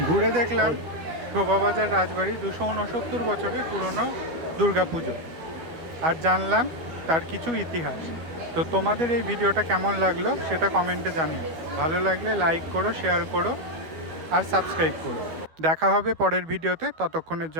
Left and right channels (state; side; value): late; left; 12 ms